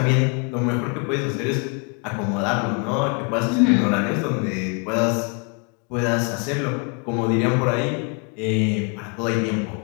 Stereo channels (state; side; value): quieter; right; 35.2 dB